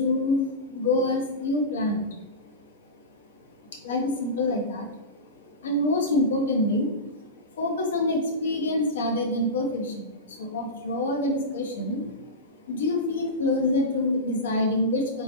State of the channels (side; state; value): both; normal; correlation -0.17